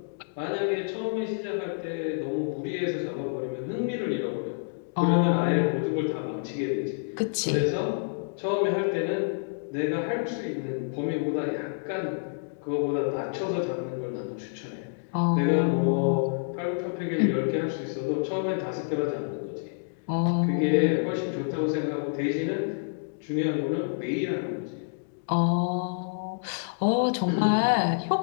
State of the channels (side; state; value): right; silent; digital silence